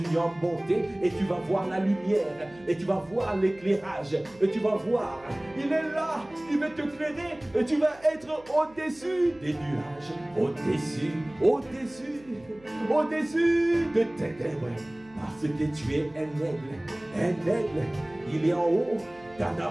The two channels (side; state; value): right; noise; hum, 26 dB below the sound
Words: à monter et tu vas voir la lumière et tu vas voir l'éclairage et tu vas voir, il est là, il va te éclairer et tu vas être au-dessus des nuages, au-dessus de ténèbres, parce que tu es un aigle, il est en haut,